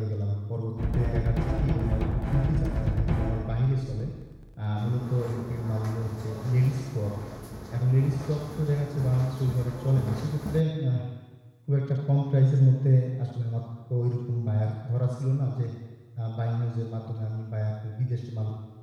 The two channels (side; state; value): both; identical; correlation 1.00